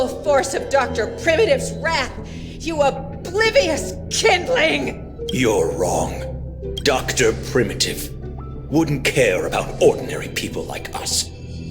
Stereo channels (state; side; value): identical; both; correlation 1.00